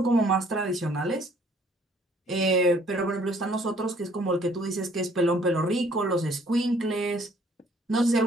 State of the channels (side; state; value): both; normal; correlation 0.60